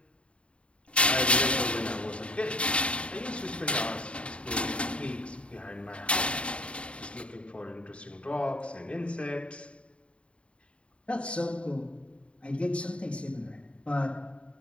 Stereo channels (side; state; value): right; late; 0.059 ms